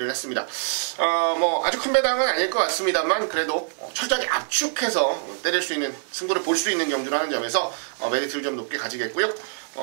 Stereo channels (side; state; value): left; silent; 62 dB below the other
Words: 했습니다. 뭐 아주 큰 배당은 아닐 것 같습니다만 그래도 철저하게 압축해서 때릴 수 있는 승부를 볼 수 있는 경주라는 점에서 메리트를 좀 높게 가지겠고요.